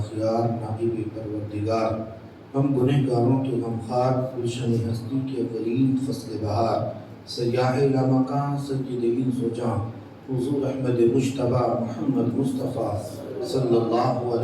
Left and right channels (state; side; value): identical; both; correlation 1.00